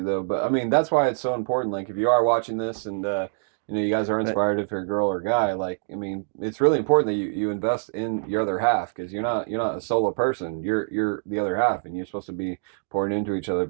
though. But I mean, that's why it's so important. Like, if you are watching this, and you guys are inspired, if you're a girl or a guy, like, I mean, it's really important that you invest in your other half, because you're not a solo person. You're the other half, and you're supposed to be pouring into each other.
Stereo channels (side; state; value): left; silent; digital silence